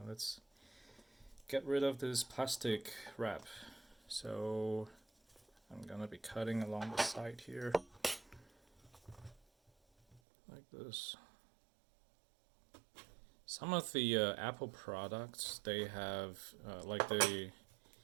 let's get rid of this plastic wrap. So I'm gonna be cutting along the side here, like this. Some of the Apple products, they have like the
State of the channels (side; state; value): left; drops out; at 10.2 s